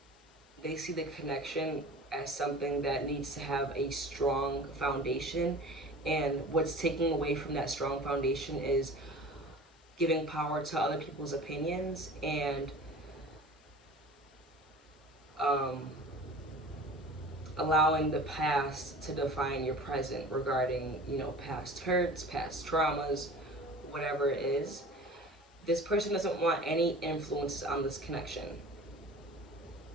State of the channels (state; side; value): normal; both; correlation 0.40